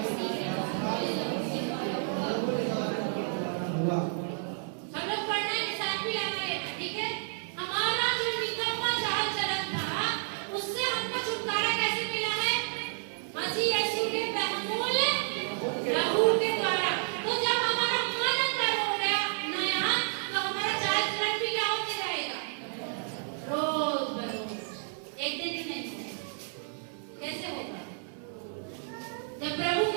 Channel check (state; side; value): silent; left; 57 dB below the other